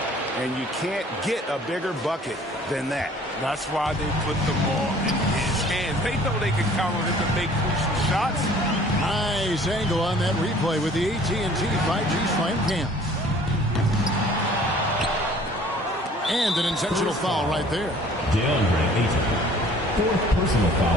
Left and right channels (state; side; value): normal; both; correlation 0.52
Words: And you can't get a bigger bucket than that. That's why they put the ball in his hands. They know they can count on him to make crucial shots. Nice angle on that replay with the AT&T 5G Slam Cam. And an intentional foul right there. DeAndre Ayton. Fourth personal